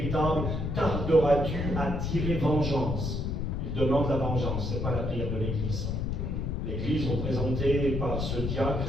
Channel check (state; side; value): noise; left; rumble, 1 dB below the sound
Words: tarderas-tu à tirer vengeance ?» Ils demandent la vengeance, ce n'est pas la prière de l'Église. L'Église, représentée par ce